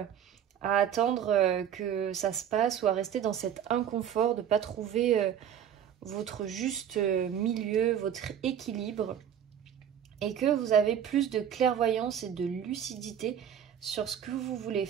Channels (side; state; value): left; quieter; 9.2 dB